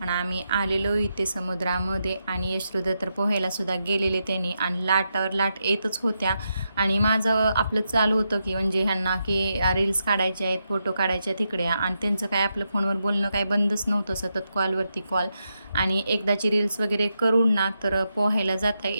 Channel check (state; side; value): inverted; both; correlation -0.85